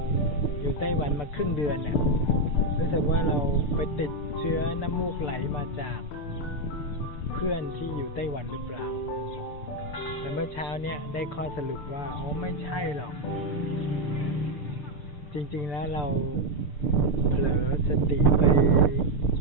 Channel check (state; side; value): late; right; 6.7 ms